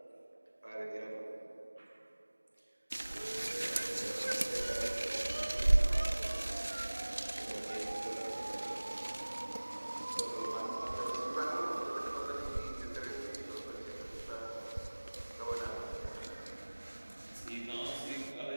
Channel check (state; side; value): inverted; both; correlation -1.00